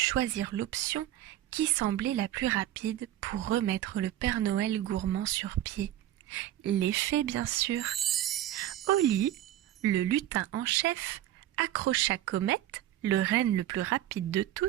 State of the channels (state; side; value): quieter; left; 13.0 dB